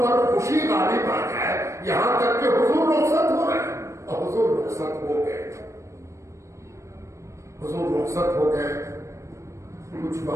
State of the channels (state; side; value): late; left; 0.15 ms